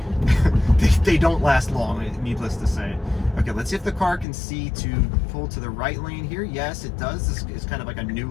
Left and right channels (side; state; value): right; drops out; at 4.2 s